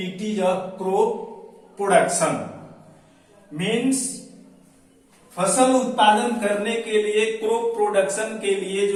of crop production. Means फसल उत्पादन करने के लिए crop production के लिए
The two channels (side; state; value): both; identical; correlation 1.00